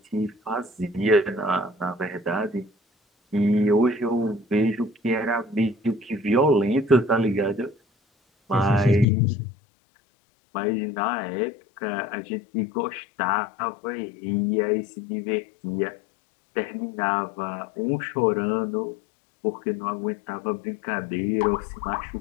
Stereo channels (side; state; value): right; drops out; at 9.1 s